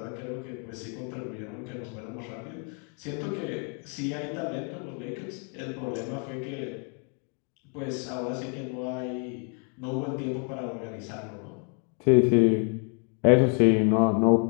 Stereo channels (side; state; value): right; quieter; 39.9 dB